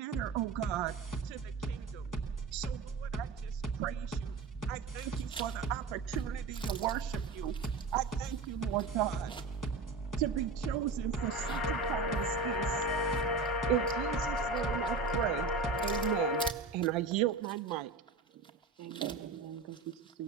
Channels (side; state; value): left; quieter; 4.0 dB